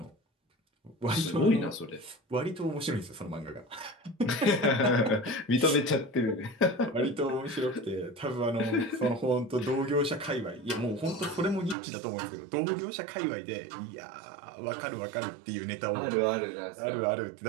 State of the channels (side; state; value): left; drops out; at 11.8 s